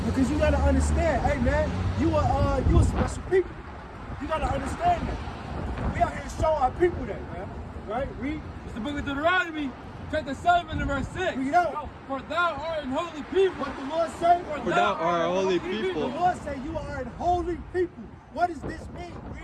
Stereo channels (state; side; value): identical; both; correlation 1.00